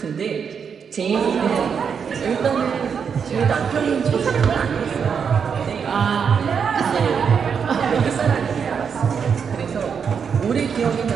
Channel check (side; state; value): left; quieter; 6.7 dB